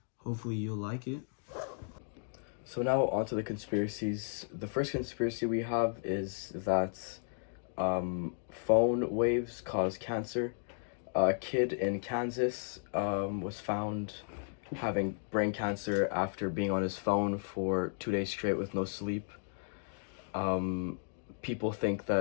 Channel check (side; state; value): right; silent; digital silence